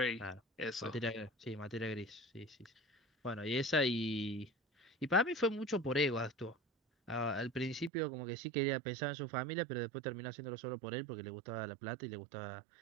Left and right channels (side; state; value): left; drops out; at 7.9 s